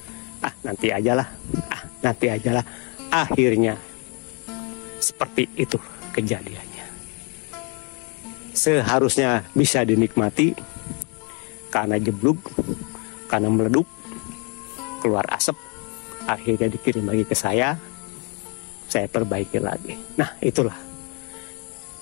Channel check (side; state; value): right; quieter; 34.3 dB